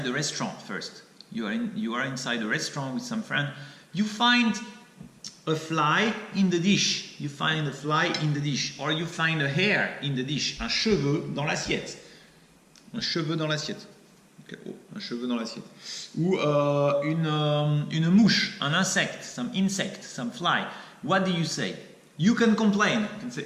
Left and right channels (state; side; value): identical; both; correlation 1.00